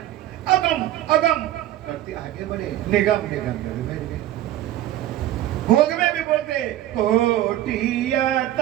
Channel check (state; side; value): quieter; left; 13.6 dB